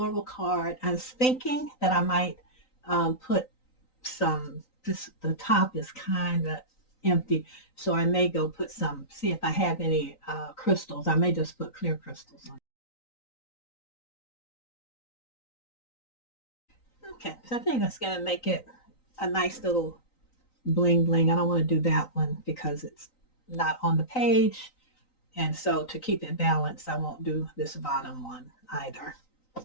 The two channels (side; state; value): right; late; 3.9 ms